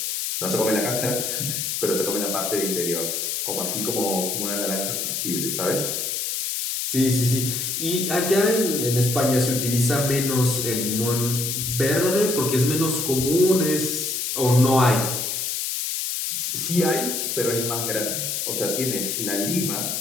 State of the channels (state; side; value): noise; left; hiss, 1 dB below the sound